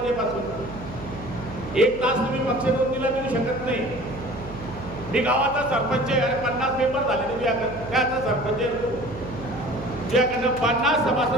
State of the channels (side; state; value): right; noise; hum, 12 dB below the sound